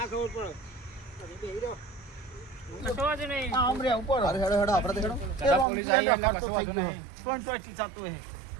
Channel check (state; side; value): drops out; left; at 5.7 s